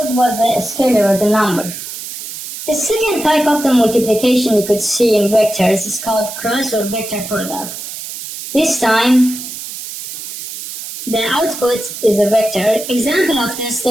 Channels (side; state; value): right; noise; hiss, 10 dB below the sound